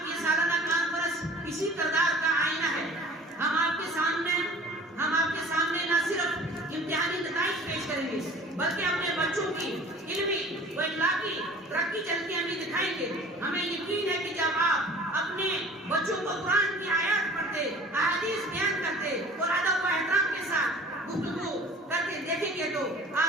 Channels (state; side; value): normal; both; correlation 0.46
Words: یہ سالانہ کانفرنس اسی کردار کا آئینہ ہے۔ ہم آپ کے سامنے نہ صرف امتحانی نتائج پیش کریں گے بلکہ اپنے بچوں کی علمی و اخلاقی ترقی چلتی ہمیں دکھائیں گے۔ ہمیں یقین ہے کہ جب آپ اپنے بچوں کو قرآن کی آیات پڑھتے، احادیث بیان کرتے اور ادب و احترام کے ساتھ گفتگو کرتے دیکھیں گے تو